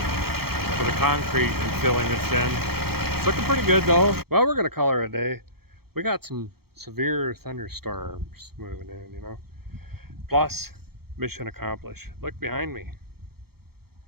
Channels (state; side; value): late; left; 0.95 ms